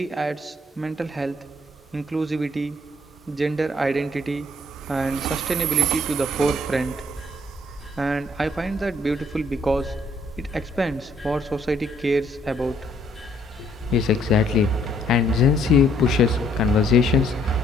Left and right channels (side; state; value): both; normal; correlation 0.65